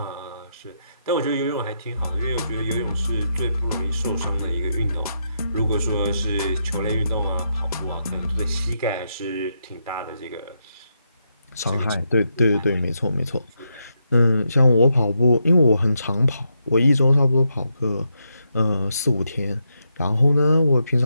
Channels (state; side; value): inverted; both; correlation -0.82